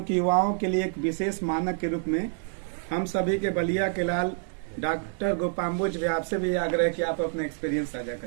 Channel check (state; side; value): silent; left; 60 dB below the other